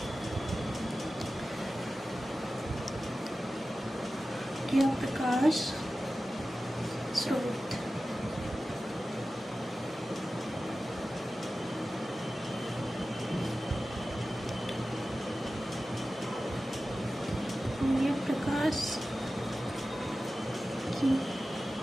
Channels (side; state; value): both; normal; correlation 0.95